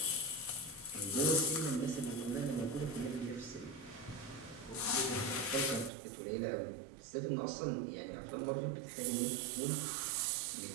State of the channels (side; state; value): left; drops out; at 5.9 s